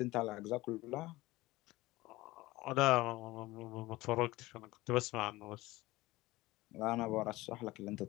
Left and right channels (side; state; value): right; quieter; 19.4 dB